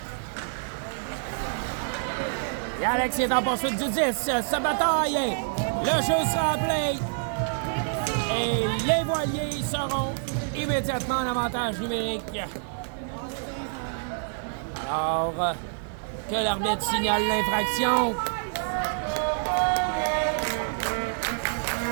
Et Alex est en poursuite du 10. Se bataille. Le jeu sera appelé. Et les voiliers seront immédiatement en avantage numérique. Alors, que l'arbitre signale l'infraction.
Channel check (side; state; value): left; silent; 58 dB below the other